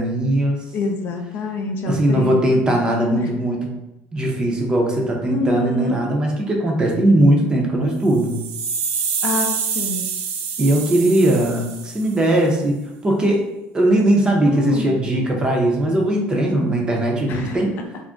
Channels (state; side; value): normal; both; correlation 0.67